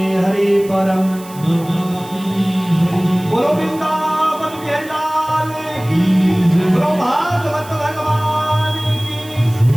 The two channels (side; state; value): right; noise; hiss, 19 dB below the sound